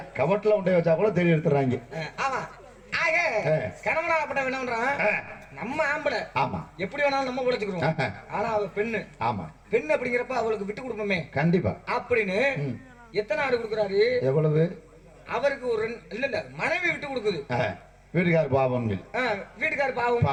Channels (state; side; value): identical; both; correlation 1.00